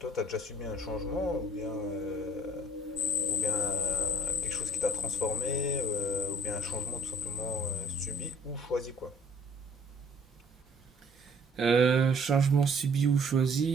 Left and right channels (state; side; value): normal; both; correlation 0.59